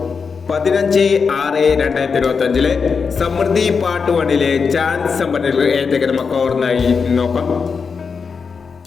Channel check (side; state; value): right; quieter; 5.5 dB